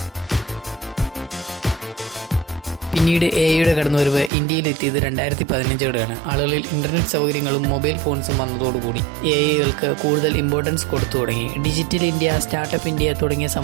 പിന്നീട് എഐയുടെ കടന്നുവരവ് ഇന്ത്യയിലെത്തിയത് 2015-ഓടെയാണ്. ആളുകളിൽ ഇൻ്റർനെറ്റ് സൗകര്യങ്ങളും മൊബൈൽ ഫോൺസും വന്നതോടുകൂടി എഐകൾക്ക് കൂടുതൽ ഇമ്പോർട്ടൻസ് കൊടുത്തു തുടങ്ങി. ഡിജിറ്റൽ ഇന്ത്യ, സ്റ്റാർട്ടപ്പ് ഇന്ത്യ തുടങ്ങിയ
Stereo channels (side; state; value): left; drops out; at 4.3 s